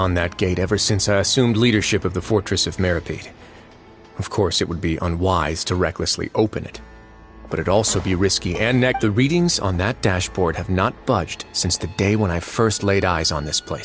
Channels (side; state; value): both; identical; correlation 1.00